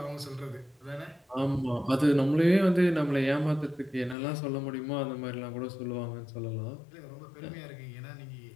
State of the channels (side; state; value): right; drops out; at 4.2 s